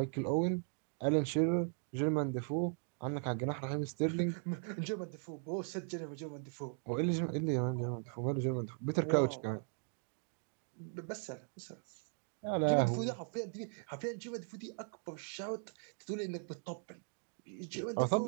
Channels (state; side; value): silent; left; 52 dB below the other